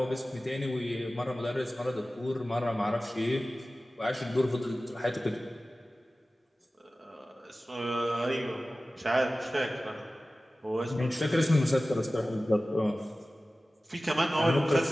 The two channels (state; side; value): normal; both; correlation 0.96